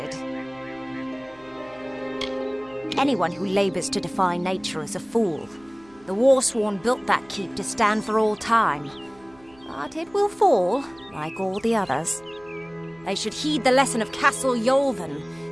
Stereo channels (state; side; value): noise; right; hum, 27 dB below the sound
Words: Anyone who labours to defy nature is a fool. The Warsworn built that keep to stand for all time. But it will fall, like all the others. They should heed the lesson of Castle Yolven.